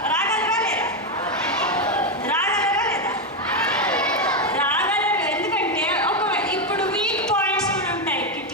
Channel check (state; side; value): normal; both; correlation 0.07